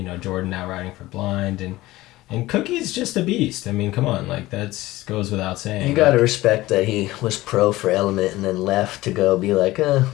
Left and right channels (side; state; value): right; quieter; 17.8 dB